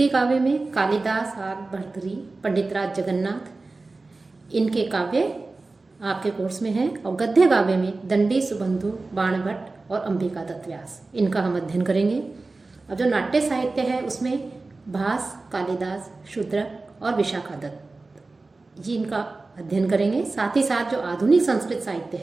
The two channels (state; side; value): quieter; left; 3.5 dB